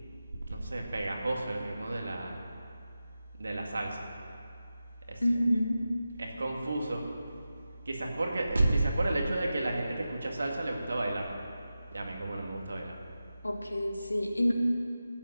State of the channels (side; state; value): both; inverted; correlation -0.93